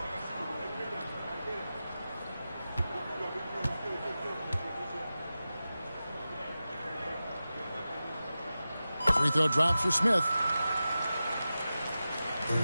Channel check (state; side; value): inverted; both; correlation -0.94